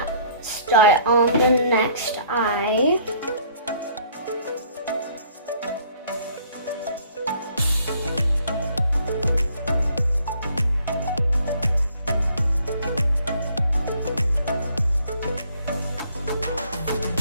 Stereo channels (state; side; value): inverted; both; correlation -0.60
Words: start on the next eye.